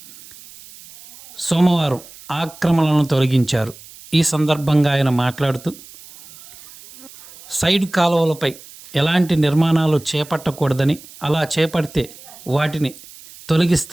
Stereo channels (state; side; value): noise; right; hiss, 20 dB below the sound